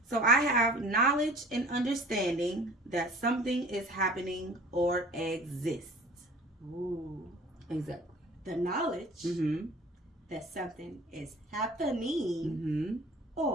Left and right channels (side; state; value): both; normal; correlation 0.45